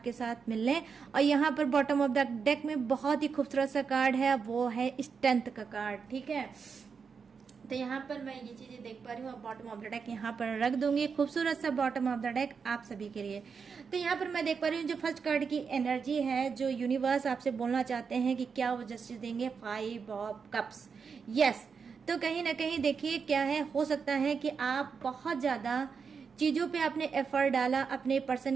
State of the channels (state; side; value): quieter; left; 5.8 dB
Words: साथ मिलने। और यहाँ पर बॉटम ऑफ द डेक में बहुत ही खूबसूरत सा कार्ड है, वो है स्ट्रेंथ का कार्ड। ठीक है, तो यहाँ पर मैं ये चीजें देख पा रही हूँ। बॉटम ऑफ द डेक यहाँ पर रख दूंगी, खूबसूरत सा बॉटम ऑफ द डेक आप सभी के लिए। तो यहाँ पर मैं देख पा रही हूँ जो फर्स्ट कार्ड की एनर्जी है, जो यूनिवर्स आपसे बोलना चाहते हैं कि क्या वो जस्टिस देंगे, 5 ऑफ कप्स। यस, तो कहीं ना कहीं देखिए क्या है, हो सकता है कि आप बहुत ज्यादा चीजों पे आपने एफर्ट डाला अपने